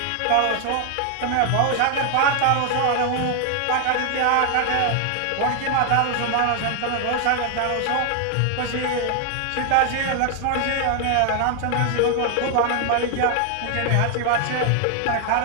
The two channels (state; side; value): different; both; correlation 0.00